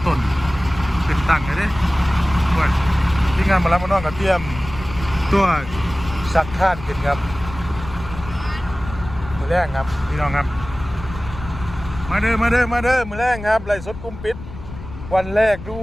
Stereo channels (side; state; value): left; noise; rumble, 12 dB below the sound